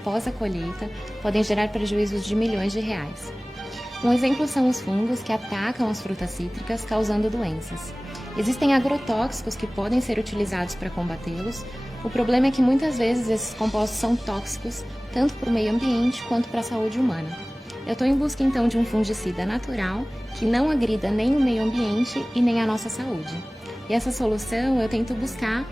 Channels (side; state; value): both; normal; correlation 0.98